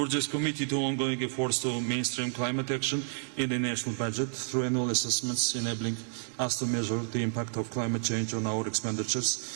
is committed to ongoing efforts to mainstream climate action in the national budget through annual assessments, enabling us to measure the impact of climate change on our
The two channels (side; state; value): left; silent; 58 dB below the other